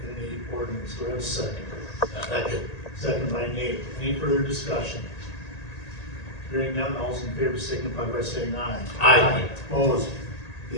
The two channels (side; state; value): right; late; 1.8 ms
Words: in the ordinance. Do I have a second? Second. Second by Nate. Any further discussion? Hearing none, all those in favor signify by saying aye. Aye. Opposed?